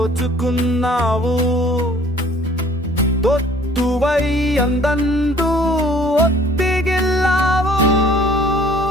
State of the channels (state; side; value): normal; both; correlation 0.54